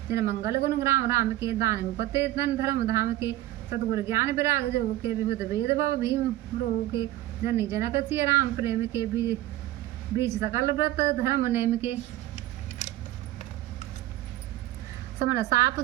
जिन मंगल गुण ग्राम राम के दान मुपते धन धर्म धाम के सतगुरु ज्ञान विराग जो के विभुत वेद भव भीम रोह के जनी जनक सिय राम प्रेम के बीच सकल व्रत धर्म नेम के समन साप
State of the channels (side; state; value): left; quieter; 15.2 dB